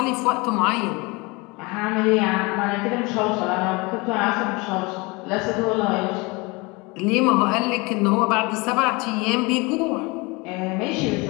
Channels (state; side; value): quieter; right; 26.2 dB